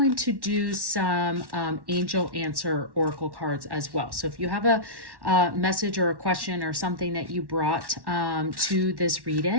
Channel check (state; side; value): late; left; 1.1 ms